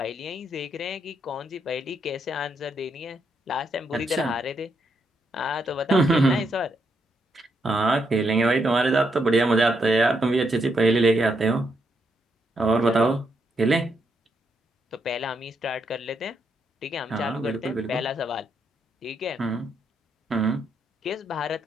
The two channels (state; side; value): normal; both; correlation 0.78